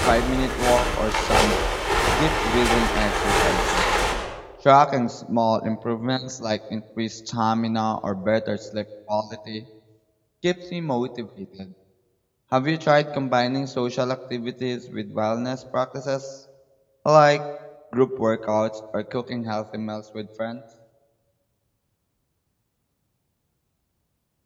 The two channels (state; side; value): identical; both; correlation 1.00